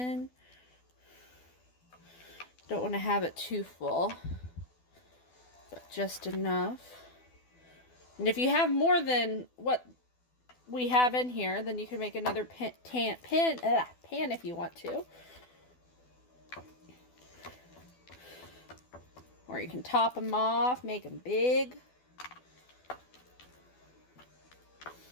Don't want to have it too full, but just enough. And if you have more than what we have in here, then you can make another pan if you want to. Or you can top them off, make them big.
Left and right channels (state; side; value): late; right; 12 ms